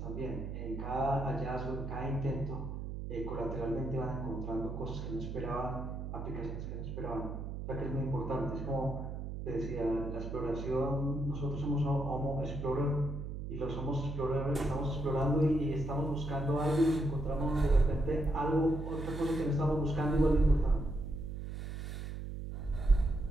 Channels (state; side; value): noise; right; hum, 6 dB below the sound